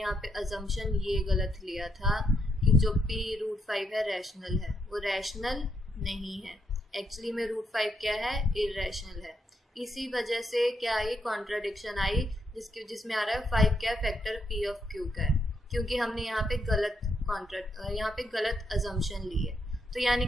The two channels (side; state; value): both; normal; correlation 0.78